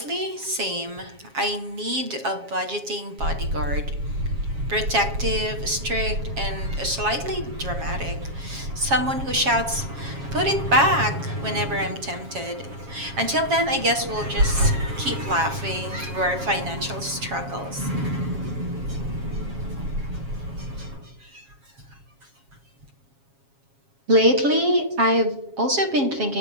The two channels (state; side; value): late; left; 7.3 ms